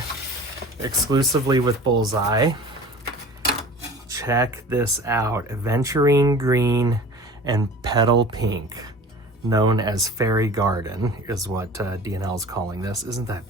exclusively with Bullseye. Check this out. Aventurine green and petal pink, known as Fairy Garden, is what D&L is calling this. Isn't that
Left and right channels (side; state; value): both; normal; correlation 0.41